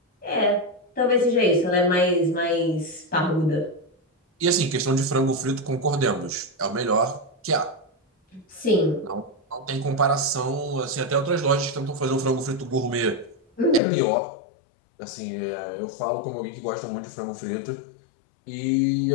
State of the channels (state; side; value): drops out; right; at 13.8 s